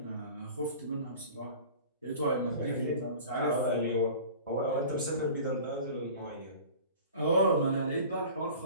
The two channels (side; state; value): both; inverted; correlation -0.41